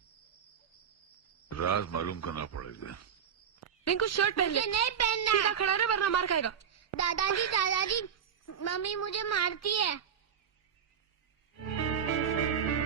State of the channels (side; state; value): left; quieter; 7.9 dB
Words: राज मालूम करना पड़ेगा। रिंकू शर्ट पहन ले। मुझे नहीं पहनना। सीधा खड़ा रहे वरना मार खाएगा। दादाजी मम्मी मुझे मारती है।